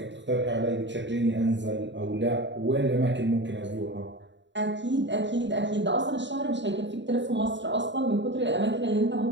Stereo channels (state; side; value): late; left; 0.53 ms